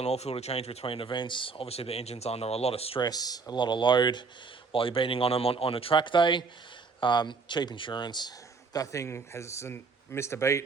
filter change between events. Obviously, the engine's under a lot of stress, a lot of load while you're beating on them on a track day. Cheap insurance. That thing hasn't missed a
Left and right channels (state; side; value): quieter; left; 4.6 dB